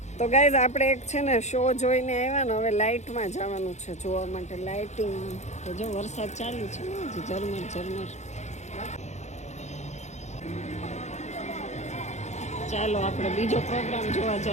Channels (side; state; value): right; late; 0.33 ms